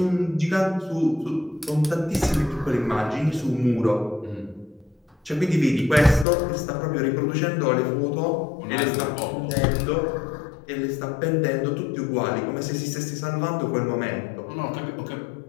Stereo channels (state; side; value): drops out; right; at 6.2 s